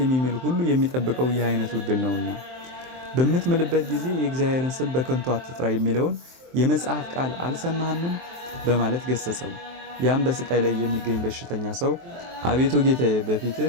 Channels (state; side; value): late; left; 23 ms